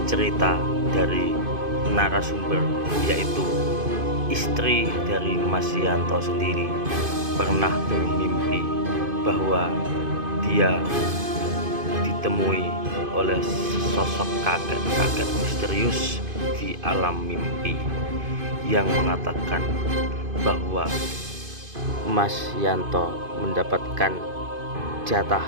cerita dari narasumber, yaitu istri dari Mas Yanto sendiri pernah bermimpi bahwa dia ditemui oleh sosok kakek-kakek misterius di alam mimpi yang mengatakan bahwa Mas Yanto mendapatkan jatah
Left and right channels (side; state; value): left; late; 2.5 ms